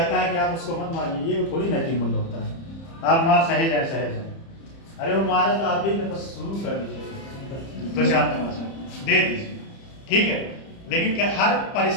है कि आप उसको मत मारिए, ये थोड़ी नैतिक मूल्य होता है। आप मार सहे जाए, अरे वो मारे तो आप भी बस शुरू कर दीजिए, 2-4 तमाचा दे दीजिए, ठीक है। लेकिन क्या हर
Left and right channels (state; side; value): late; right; 30 ms